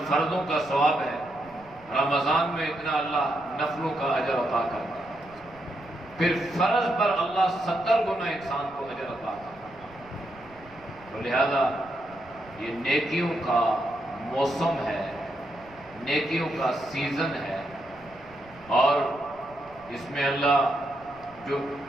فرضوں کا ثواب ہے رمضان میں اتنا اللہ نفلوں کا اجر عطا کرتا ہے۔ پھر فرض پر اللہ 70 گنا انسان کو اجر عطا کرتا ہے۔ تو لہذا یہ نیکیوں کا موسم ہے، نیکیوں کا سیزن ہے، اور اس میں اللہ جو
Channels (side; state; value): right; noise; rumble, 24 dB below the sound